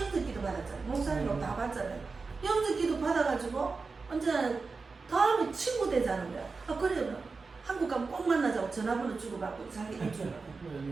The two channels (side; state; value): left; quieter; 4.3 dB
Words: 받았잖아요. 목사님하고 다 받잖아요. 영접기도 받아가지고 언제 다음에 친구 되자는 거야. 그래요. 한국 가면 꼭 만나자고 전화번호 주고받고 자기가 주고.